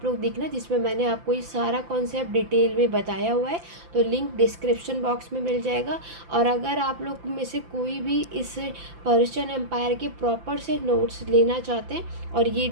लोग देखना, जिसमें मैंने आपको ये सारा कॉन्सेप्ट डिटेल में बताया हुआ है, तो लिंक डिस्क्रिप्शन बॉक्स में मिल जाएगा। और अगर आप लोग में से कोई भी इस पर्शियन एम्पायर के प्रॉपर से नोट्स लेना चाहते हैं, और ये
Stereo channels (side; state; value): left; late; 5.8 ms